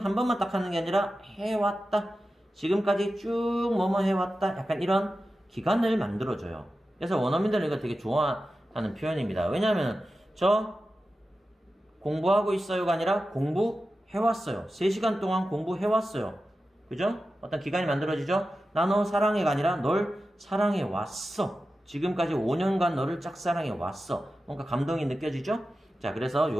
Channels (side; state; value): both; normal; correlation 0.93